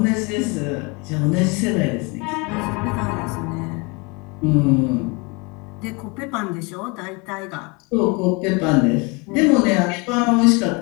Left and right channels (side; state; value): right; quieter; 28.8 dB